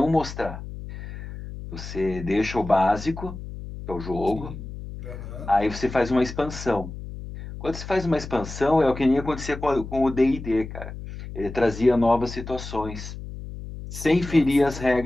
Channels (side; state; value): left; noise; hum, 10 dB below the sound